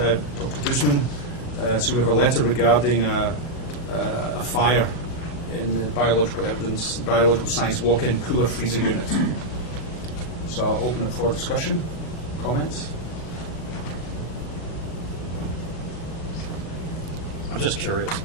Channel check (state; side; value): late; right; 39 ms